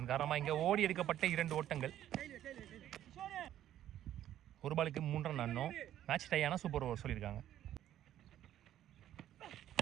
காரணமாக இங்கே ஓடி எடுக்கப்பட்ட 2 ஓட்டங்கள். ஒரு பாலுக்கு 3 ரன் ஆடணும். மேட்ச் டை ஆனால் சூப்பர் ஓவர் சொல்லியிருக்காங்க.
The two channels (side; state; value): left; quieter; 11.8 dB